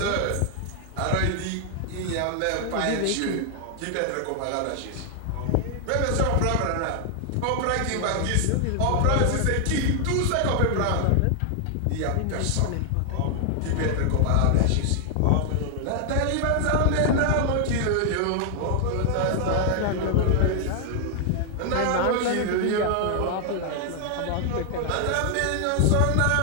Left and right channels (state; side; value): different; both; correlation 0.00